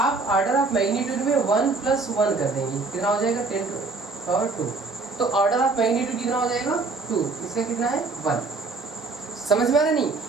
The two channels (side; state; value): left; quieter; 3.9 dB